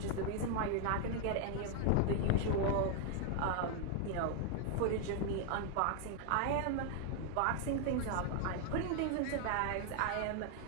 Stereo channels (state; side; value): different; both; correlation 0.00